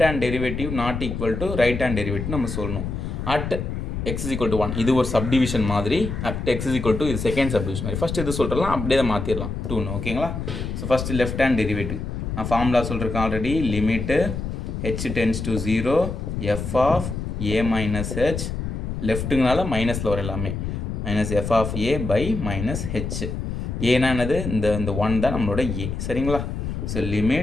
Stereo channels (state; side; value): noise; left; rumble, 4 dB below the sound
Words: hand derivative not equal to right hand derivative நம்ம சொல்லணும். At x is equal to 1, இது ஒரு சப்டிவிஷன் மாதிரி. At x is equal to, இது செகண்ட் சப்டிவிஷன் மாதிரி. ஃபஸ்ட்டு இது சொல்கிறலாம், அப்படியே தான் மாற்றிடலாம் 2ன்னு. ஓகேங்களா? So first left hand derivative நான் ஃபார்முலா சொல்லியிருக்கேன் already. Limit h tends to 0 f of a minus h, லெஃப்ட்டுங்கனால மைனஸில் வர எல்லாமே, minus f of a by minus h. ஏன்னா என்னது, இந்த 1 தான் நம்மளோட ஏ. சரிங்களா? So